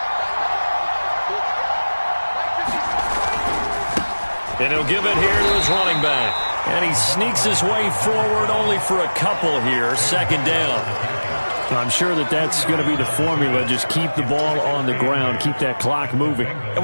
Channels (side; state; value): both; inverted; correlation -1.00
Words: And he'll give it here to his running back. And he sneaks his way forward only for a couple here. 2nd down. I'm sure that that's going to be the formula. Just keep the ball on the ground. Keep that clock moving. And